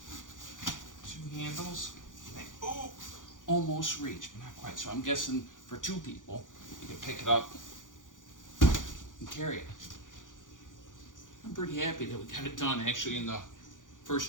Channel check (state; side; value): late; right; 0.88 ms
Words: 2 handles. They almost reach, but not quite. So I'm guessing for 2 people, you can pick it up and carry it. I'm pretty happy that we got it done actually in the